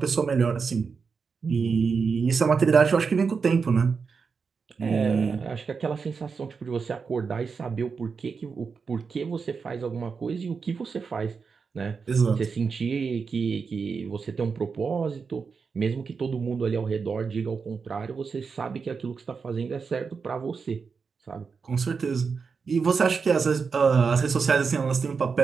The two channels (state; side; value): quieter; left; 5.3 dB